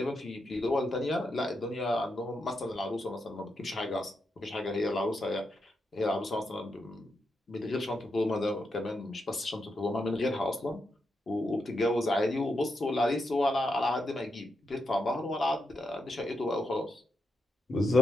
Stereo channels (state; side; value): normal; both; correlation 0.84